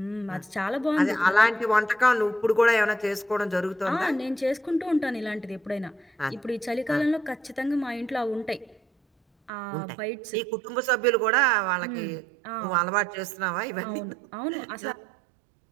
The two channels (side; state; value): left; drops out; at 9.5 s